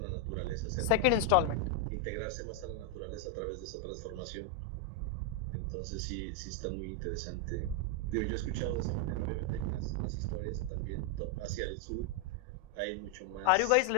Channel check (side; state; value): both; different; correlation 0.00